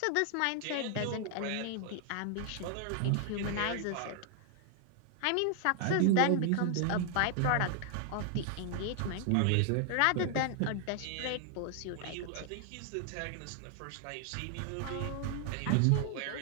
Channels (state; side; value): different; both; correlation 0.00